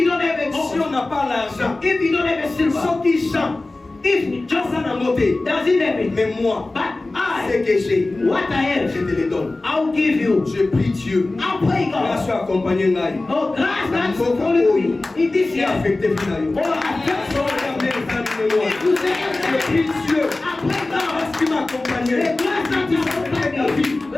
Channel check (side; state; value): right; quieter; 3.0 dB